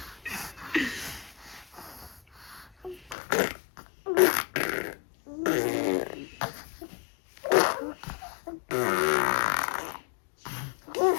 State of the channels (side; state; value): right; drops out; at 3.2 s